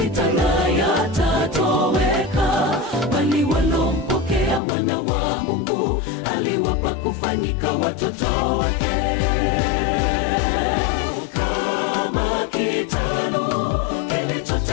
na yatatoweka, bali walompokea mwana wa Mungu aliwapa kufanyika watoto wake. Kama kitalu kilicho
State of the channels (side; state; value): right; drops out; at 4.6 s